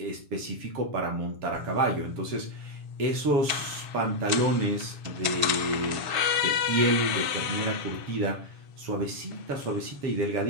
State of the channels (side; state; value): left; late; 7.1 ms